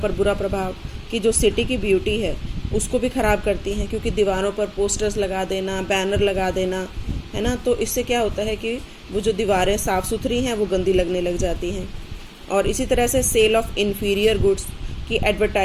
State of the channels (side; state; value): both; identical; correlation 1.00